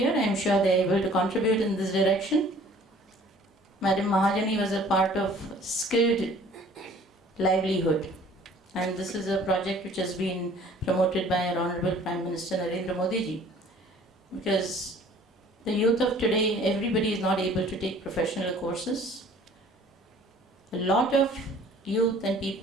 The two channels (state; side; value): normal; both; correlation 0.52